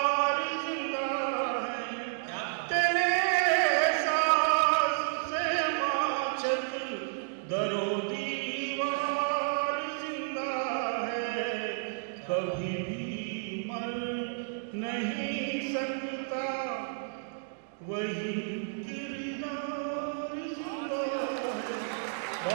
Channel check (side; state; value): left; silent; digital silence